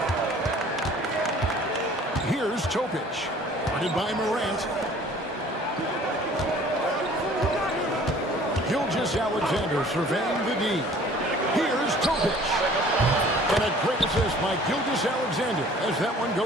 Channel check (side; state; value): both; normal; correlation 0.51